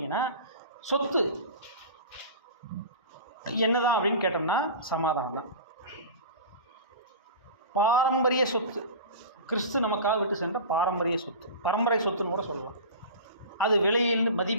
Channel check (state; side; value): inverted; both; correlation -0.33